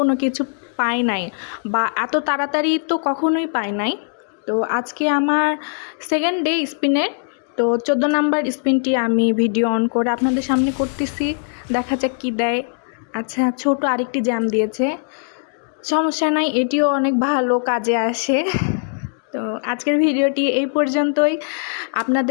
কিছু পাই নাই, বা এত তাড়াতাড়ি তো কখনোই পাই নাই। তো আজকে আমার সেকেন্ড ডে স্পিনের। তো 14 নাম্বার স্পিনটি আমি ভিডিও অন করে আপনাদের সামনে করতেছি, দেখা যাক কী দেয়। আচ্ছা, ছোট আরেকটি জ্যাম দিয়েছে, সমস্যা নাই, এটিও অনেক ভালো কাজে আসে। তো আজকের ভিডিওটি এই পর্যন্তই।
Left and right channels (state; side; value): silent; right; digital silence